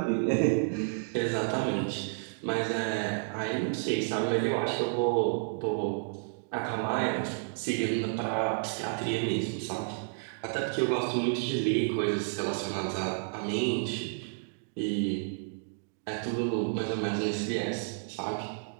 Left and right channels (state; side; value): silent; left; digital silence